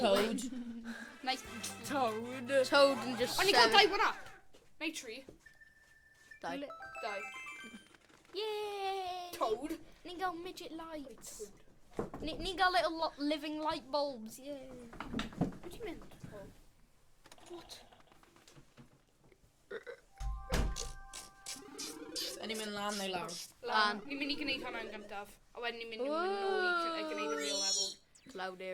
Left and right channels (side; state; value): both; identical; correlation 1.00